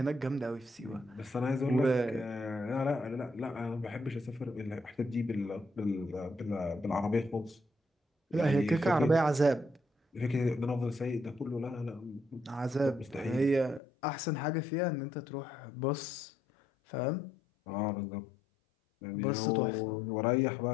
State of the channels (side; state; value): right; drops out; at 13.8 s